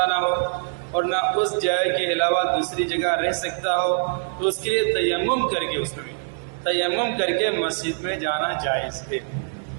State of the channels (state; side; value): silent; left; digital silence